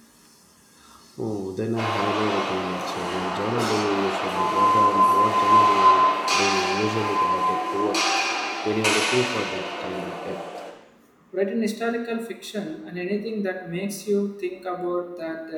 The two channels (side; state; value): both; identical; correlation 1.00